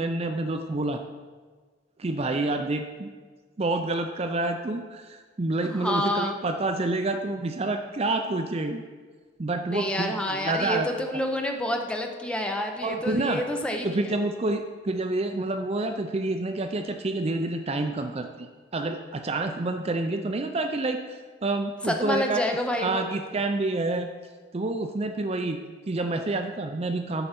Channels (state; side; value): normal; both; correlation 0.48